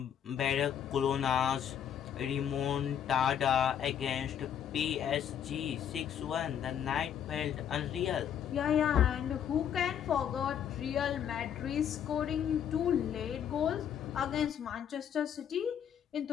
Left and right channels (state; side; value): quieter; right; 9.0 dB